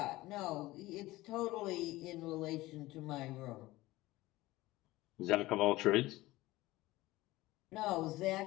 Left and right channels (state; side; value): quieter; right; 18.5 dB